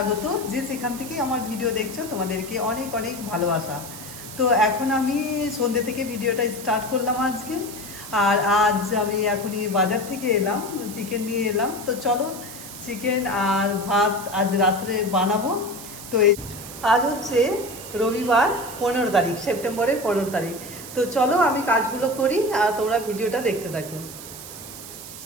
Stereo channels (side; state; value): right; noise; hiss, 13 dB below the sound